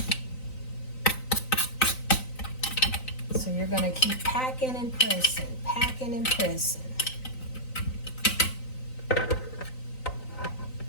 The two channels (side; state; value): right; late; 3.9 ms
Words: So you're going to keep packing and pressing, packing and pressing.